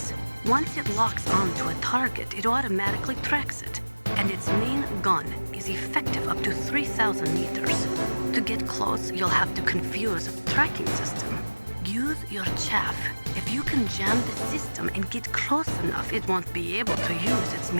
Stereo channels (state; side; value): inverted; both; correlation -1.00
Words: Once it locks onto a target, it automatically tracks it, and its main gun is effective up to 3,000 meters. To get close, you'll have to confuse a tracking system. Use your chaff. If you can jam the system and get close enough, it won't be able to use its